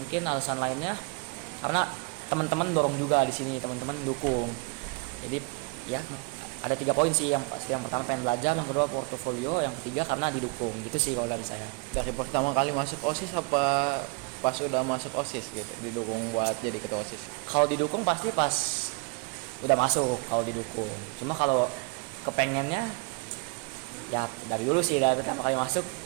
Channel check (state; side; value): quieter; left; 31.5 dB